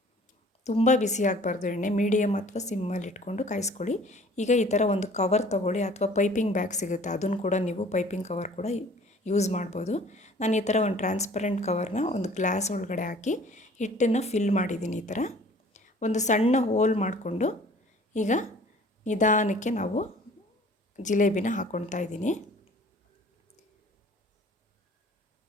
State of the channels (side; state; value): both; normal; correlation 0.51